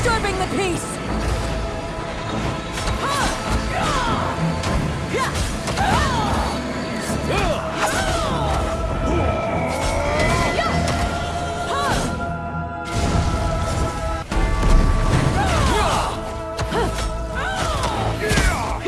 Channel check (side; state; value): both; identical; correlation 1.00